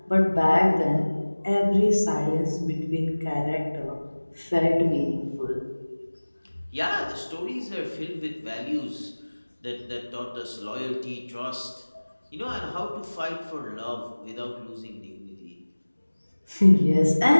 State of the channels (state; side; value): inverted; both; correlation -1.00